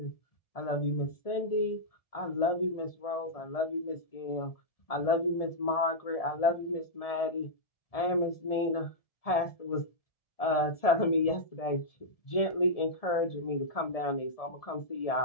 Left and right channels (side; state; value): right; late; 1.7 ms